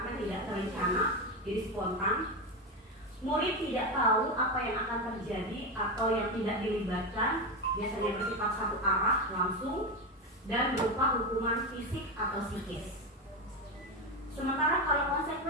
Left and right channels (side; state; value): both; normal; correlation 0.15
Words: tidak terencana, jadi spontan. Murid tidak tahu apa yang akan terjadi atau yang tidak dilibatkan, biasanya bersifat satu arah langsung dan berupa hukuman fisik atau psikis. Sementara kalau